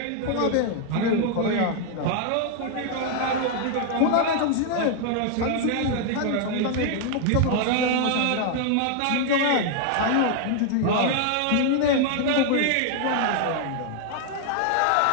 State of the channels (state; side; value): different; both; correlation 0.00